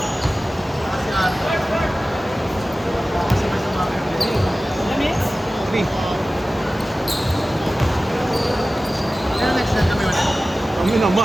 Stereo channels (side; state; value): both; normal; correlation 0.96